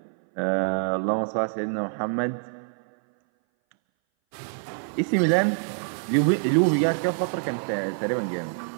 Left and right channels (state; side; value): silent; left; 60 dB below the other